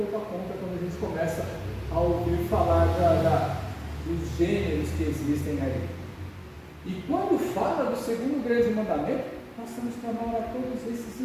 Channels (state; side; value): identical; both; correlation 1.00